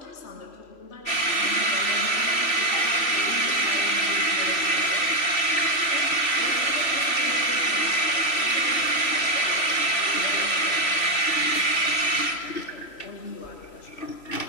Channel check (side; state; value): right; late; 3.1 ms